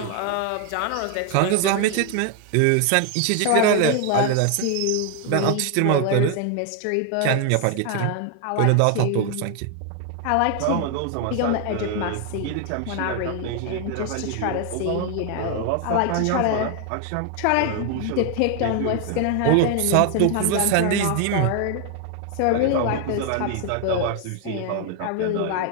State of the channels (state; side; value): different; both; correlation 0.01